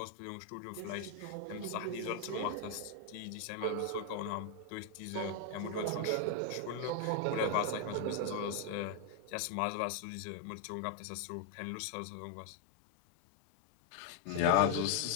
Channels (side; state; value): both; different; correlation 0.00